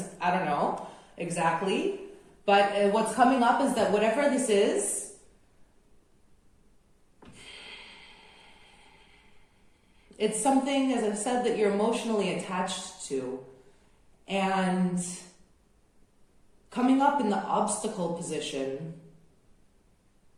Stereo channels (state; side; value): identical; both; correlation 1.00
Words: I don't know exactly. But what's coming up is that whatever this is, it's something, as I've said, that you're emotionally attached to. And coming up in the obstacle position,